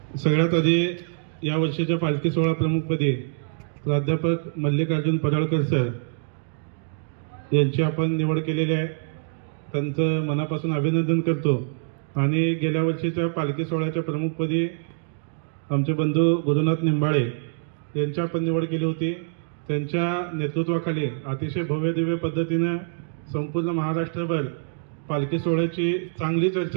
सगळ्यात आधी या वर्षीच्या पालखी सोहळा प्रमुखपदी प्राध्यापक मल्लिकार्जुन पराळकर सर यांची आपण निवड केलेली आहे. त्यांचं मनापासून अभिनंदन करतो. आणि गेल्या वर्षीच्या पालखी सोहळ्याच्या प्रमुखपदी आमचे बंधू गुरुनाथ निंबाळे यांची आपण निवड केली होती. त्यांच्या नेतृत्वाखाली अतिशय भव्य दिव्य पद्धतीनं संपूर्ण महाराष्ट्रभर पालखी सोहळ्याची चांगली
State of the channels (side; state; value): left; silent; digital silence